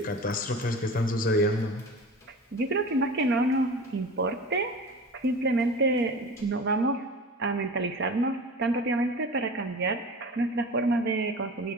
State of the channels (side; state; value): both; normal; correlation 0.35